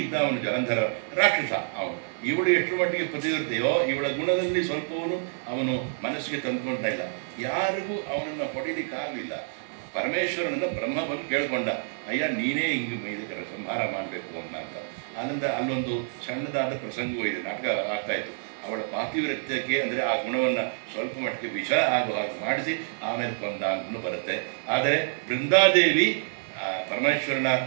ಇದ್ದ ಅವನು ಜಲಂಧರ ರಾಕ್ಷಸ ಅವನು. ಇವಳು ಎಷ್ಟರ ಮಟ್ಟಿಗೆ ಪತಿವ್ರತೆಯೋ ಇವಳ ಗುಣದಲ್ಲಿ ಸ್ವಲ್ಪವನು ಅವನು ಮನಸ್ಸಿಗೆ ತಂದುಕೊಂಡ ಇಲ್ಲ. ಯಾರಿಗೂ ಅವನನ್ನು ಹೊಡಿಲಿಕ್ಕಾಗಲಿಲ್ಲ. ಪರಮೇಶ್ವರನನ್ನು ಬ್ರಹ್ಮ ಬಂದು ಕೇಳ್ಕೊಂಡ, ಅಯ್ಯ ನೀನೇ ಹಿಂಗೆ ಇದಕ್ಕೆ ಸಂಹಾರ ಮಾಡಬೇಕು ಅಂತ. ಆನಂದ ಅಲ್ಲೊಂದು ಸಣ್ಣದಾದ ಪ್ರಸಂಗವೂ ಇದೆ, ನಾಟಕ ಆಗ್ತಾಯಿತ್ತು. ಅವಳ ಪಾತಿವ್ರತ್ಯಕ್ಕೆ ಅಂದರೆ ಆ ಗುಣವನ್ನು ಸ್ವಲ್ಪ ಮಟ್ಟಿಗೆ ವಿಷ ಆಗುವ ಹಾಗೆ ಮಾಡಿಸಿ ಆಮೇಲೆ ಕೊಂದ ಅಂತಲೂ ಬರುತ್ತೆ. ಆದರೆ ಬೃಂದಾದೇವಿ ಪರಮೇಶ್ವರನ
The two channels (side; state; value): left; silent; digital silence